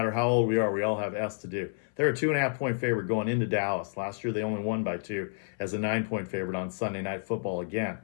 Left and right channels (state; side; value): silent; right; 56 dB below the other